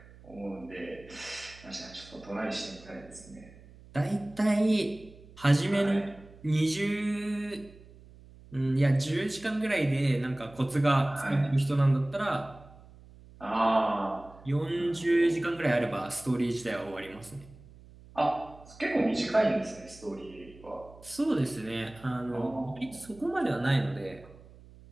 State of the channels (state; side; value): noise; right; hum, 22 dB below the sound